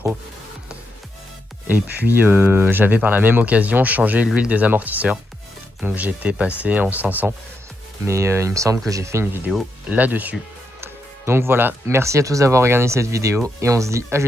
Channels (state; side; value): normal; both; correlation 0.82